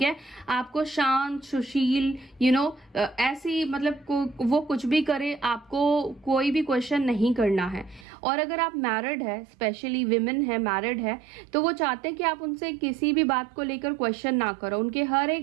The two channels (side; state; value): left; drops out; at 8.1 s